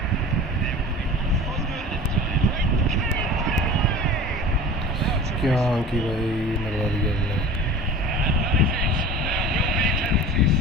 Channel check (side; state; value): both; normal; correlation 0.38